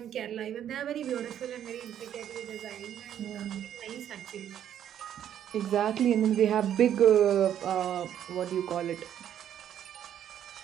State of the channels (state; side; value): quieter; left; 10.2 dB